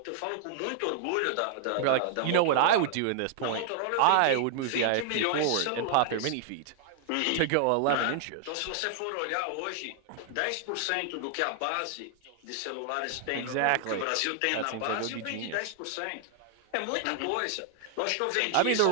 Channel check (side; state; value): both; different; correlation 0.00